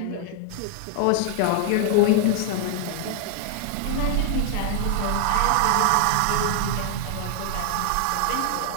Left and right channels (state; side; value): different; both; correlation 0.00